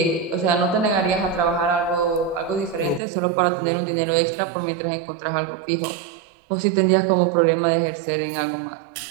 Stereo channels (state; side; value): drops out; left; at 3.0 s